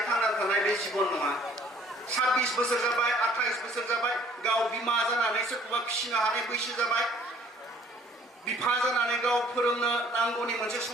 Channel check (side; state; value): both; normal; correlation 0.57